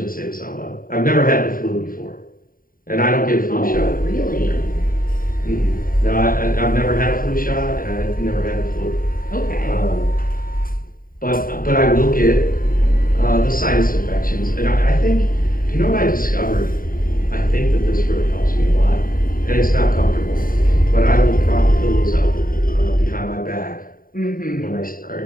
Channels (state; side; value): late; right; 0.41 ms